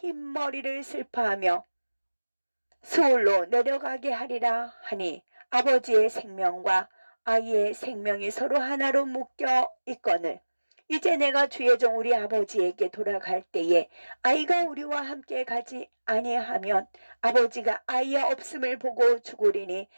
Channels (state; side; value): inverted; both; correlation -1.00